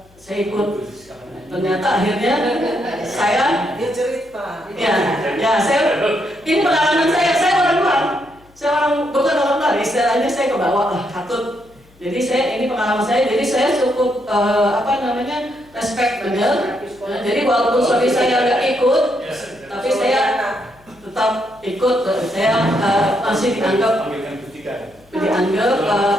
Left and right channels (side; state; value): left; noise; hum, 29 dB below the sound